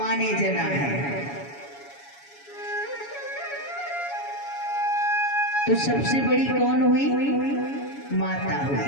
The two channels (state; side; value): late; right; 7.1 ms